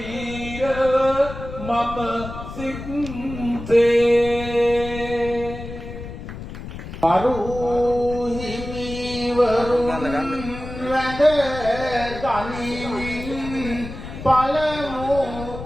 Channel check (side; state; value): left; noise; rumble, 10 dB below the sound